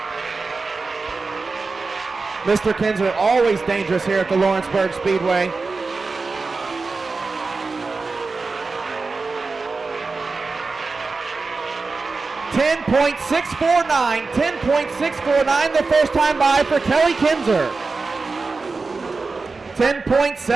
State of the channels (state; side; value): quieter; left; 4.1 dB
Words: Mr. Kinzer always dangerous here at the Lawrenceburg Speedway. .10.649 the first time by for Kelly Kinzer.